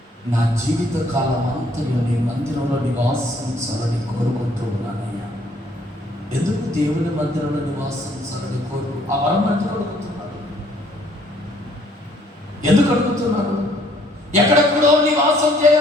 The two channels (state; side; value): normal; both; correlation 0.63